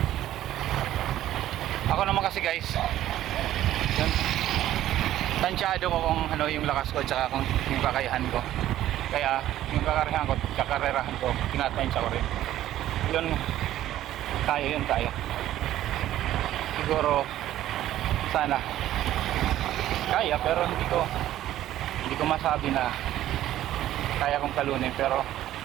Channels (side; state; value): left; quieter; 13.2 dB